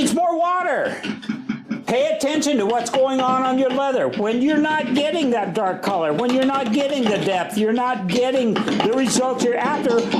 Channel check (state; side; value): identical; both; correlation 1.00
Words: more water. Pay attention to what's going on your leather. When you're not getting that dark color, when you're not getting the depth, you're not getting the results you're after,